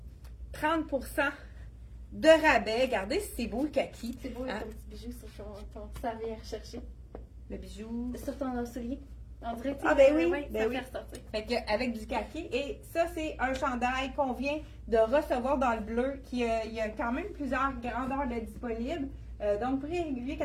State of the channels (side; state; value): both; identical; correlation 1.00